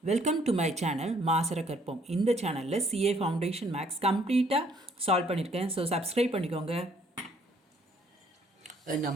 Welcome to my channel மாசர கற்போம். இந்த சேனலில் சிஏ ஃபவுண்டேஷன் மேக்ஸ் கம்ப்ளீட்டாக சால்வ் பண்ணியிருக்கேன். ஸோ சப்ஸ்கிரைப் பண்ணிக்கோங்க. A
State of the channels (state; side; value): normal; both; correlation 0.64